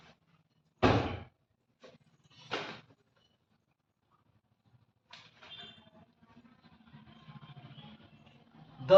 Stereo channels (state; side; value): identical; both; correlation 1.00